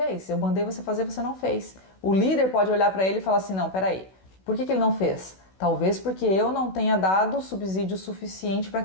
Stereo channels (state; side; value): late; right; 16 ms